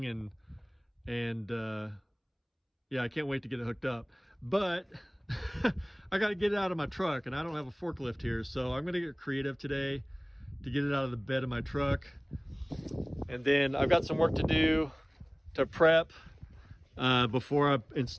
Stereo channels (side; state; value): both; identical; correlation 1.00